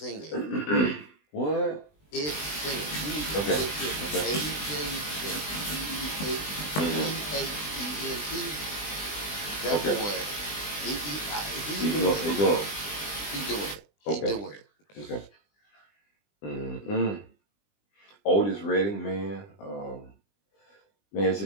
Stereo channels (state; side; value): late; right; 20 ms